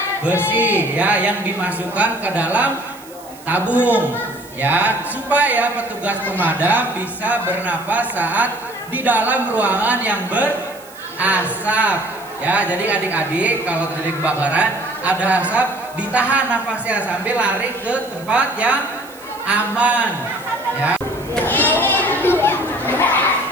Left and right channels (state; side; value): noise; right; hiss, 21 dB below the sound